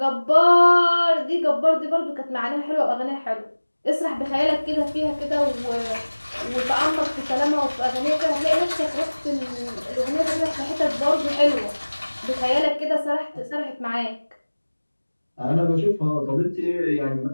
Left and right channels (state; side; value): inverted; both; correlation -1.00